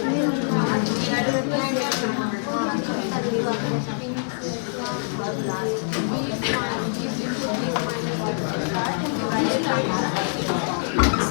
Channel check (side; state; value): right; silent; 62 dB below the other